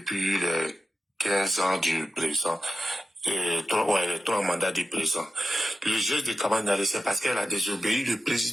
les 15 ans du président, les 3 mandats du président. Le geste de Kamaniali, c'est parce qu'elle a désobéi le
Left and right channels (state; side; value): normal; both; correlation 0.90